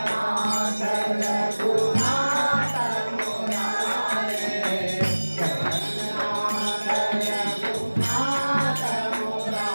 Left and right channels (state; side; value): inverted; both; correlation -1.00